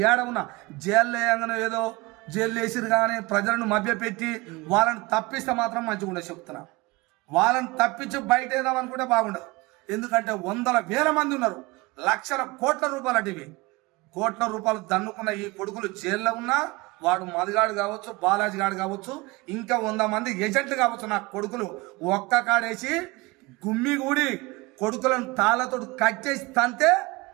ఏడవున జైల్లో వేయగానే ఏదో జైలు వేసిరు కానీ ప్రజలను మభ్యపెట్టి వాళ్ళని తప్పిస్తే మాత్రం మంచిగా ఉండే చెప్తున్నా. వాళ్ళని తప్పించి బయట వేద్దాం అనుకుంటే బాగుండదు. ఎందుకంటే వందల వేల మంది ఉన్నారు, లక్షల కోట్ల రూపాయలు అటివి. కోట్ల రూపాయలు దన్నుకున్న ఈ కొడుకులు జైల్లో ఉన్నా, వాడు మదిగాడు కావచ్చు, బాలాజీ గాడు కావచ్చు, ఇంకా 100 మంది ఏజెంట్లు కావచ్చు, నా కొడుకులు ఒక్క కాడేసి గుమ్మి కూడి కొడుకులను తాళ్ళతో కట్ చేసి తంతే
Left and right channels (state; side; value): quieter; left; 23.4 dB